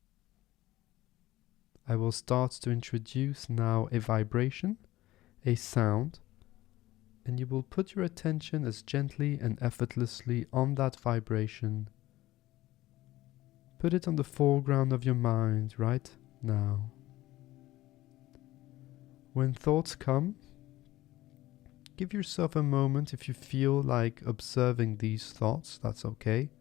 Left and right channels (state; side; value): quieter; right; 16.7 dB